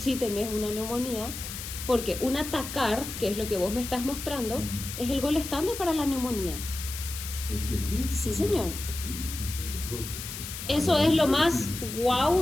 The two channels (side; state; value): left; noise; hiss, 8 dB below the sound